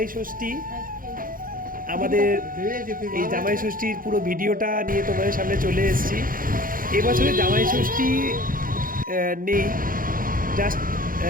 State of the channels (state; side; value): late; left; 0.41 ms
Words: ষষ্ঠী। আমাদের এই জামাই ষষ্ঠীর পুরো ভিডিওটা নিয়ে তোমাদের সামনে চলে এসেছি। এবছরে জামাই ষষ্ঠী নেই, জাস্ট